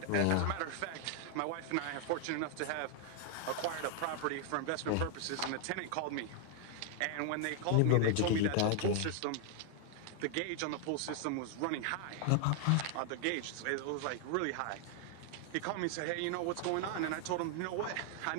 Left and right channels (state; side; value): different; both; correlation 0.00